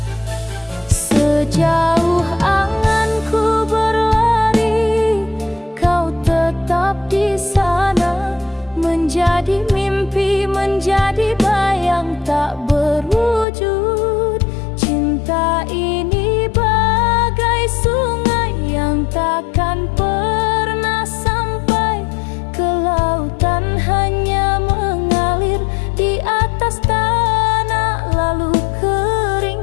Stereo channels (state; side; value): drops out; right; at 13.5 s